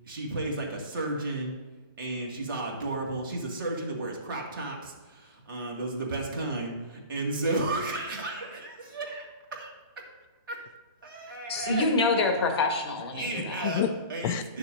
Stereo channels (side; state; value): both; inverted; correlation -0.34